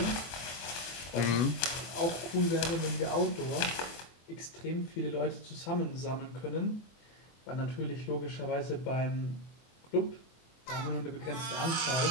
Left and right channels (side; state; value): right; late; 24 ms